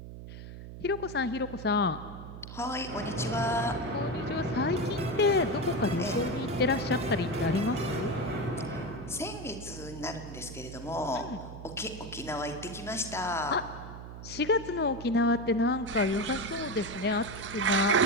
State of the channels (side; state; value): right; noise; hum, 12 dB below the sound